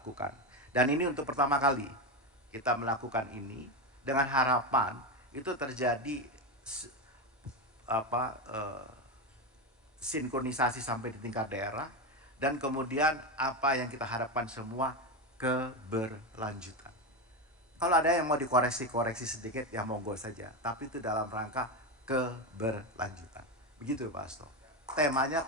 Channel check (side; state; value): both; normal; correlation 0.14